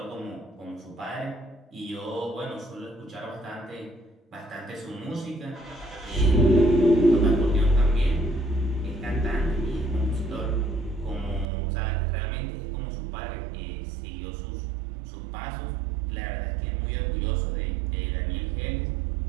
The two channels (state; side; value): drops out; left; at 11.5 s